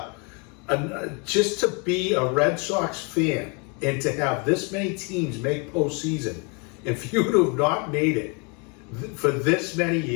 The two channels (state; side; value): quieter; right; 33.4 dB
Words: just to be a Red Sox fan and to have this many teams make postseason, and for you to have not made it for this many